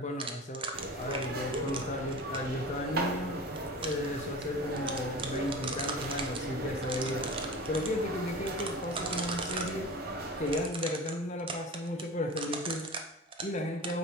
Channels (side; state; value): both; normal; correlation 0.35